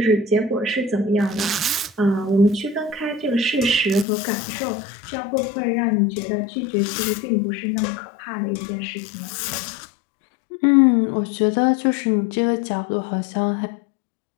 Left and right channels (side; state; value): right; drops out; at 4.0 s